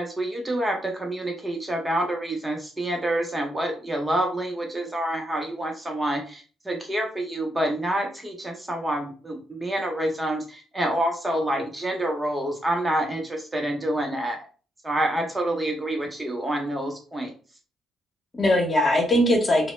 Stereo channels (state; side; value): normal; both; correlation 0.80